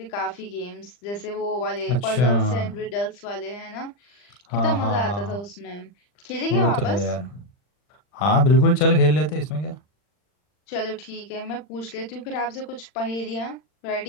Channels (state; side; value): late; right; 40 ms